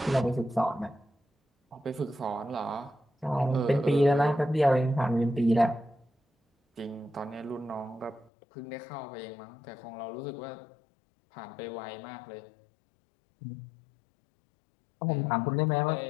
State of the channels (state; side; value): drops out; right; at 8.3 s